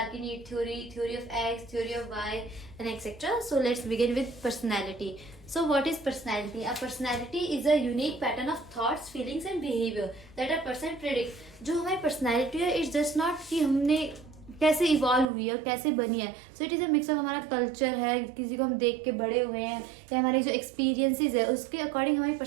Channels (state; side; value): drops out; left; at 15.2 s